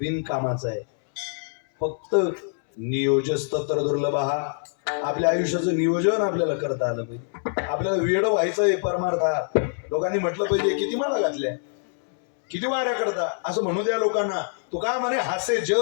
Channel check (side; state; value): right; silent; 62 dB below the other